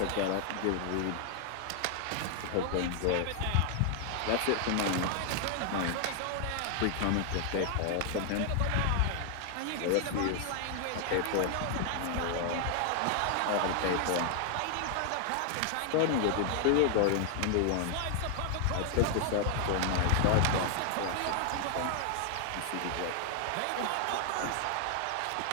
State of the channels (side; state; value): both; different; correlation 0.00